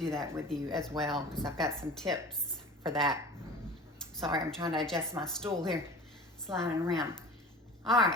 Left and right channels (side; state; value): both; normal; correlation 0.39